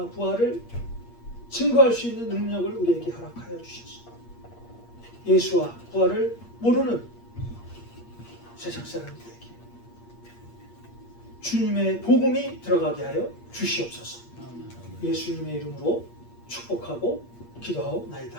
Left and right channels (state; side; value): late; right; 8.5 ms